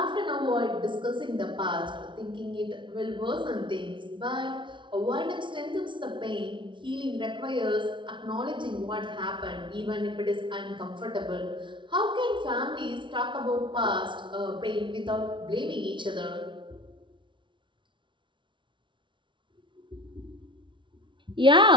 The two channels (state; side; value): late; left; 0.24 ms